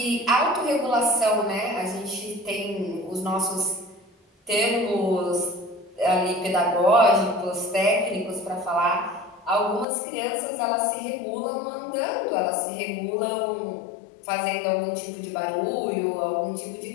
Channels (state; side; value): drops out; right; at 9.9 s